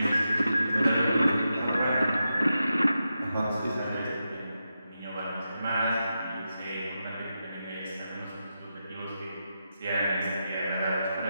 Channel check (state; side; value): inverted; both; correlation -0.88